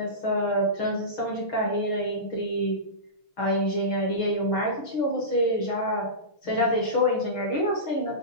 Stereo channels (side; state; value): right; late; 6.3 ms